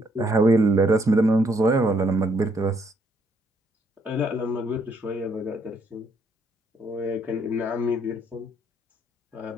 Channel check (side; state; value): both; normal; correlation 0.70